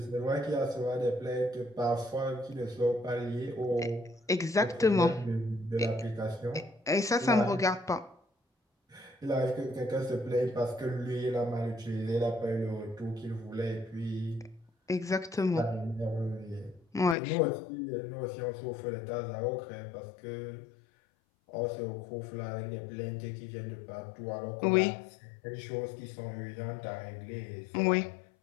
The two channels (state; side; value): drops out; right; at 17.2 s